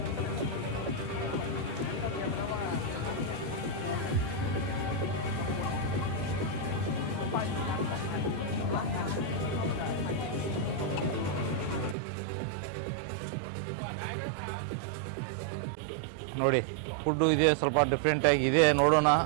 ನೋಡಿ ಫುಡ್ಡು ಇದೆ, ಸ್ವಲ್ಪ ಡಿಫ್ರೆಂಟಾಗಿ ಇದೆ. ನೋಡೋಣ,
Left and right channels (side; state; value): left; drops out; at 12.0 s